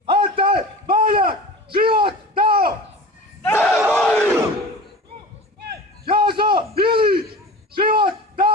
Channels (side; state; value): both; normal; correlation 0.35